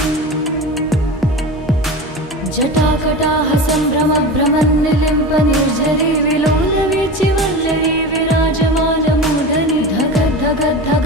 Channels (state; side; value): normal; both; correlation 0.28